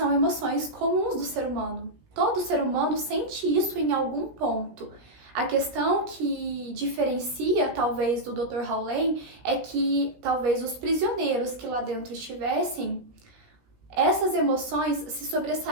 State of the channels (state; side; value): late; left; 17 ms